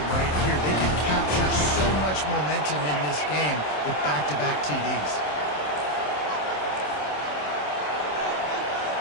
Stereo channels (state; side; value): late; right; 27 ms